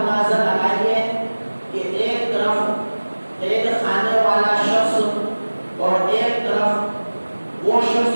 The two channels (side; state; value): both; inverted; correlation -1.00